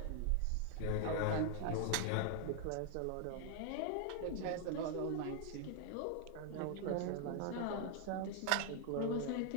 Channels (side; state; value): both; different; correlation 0.00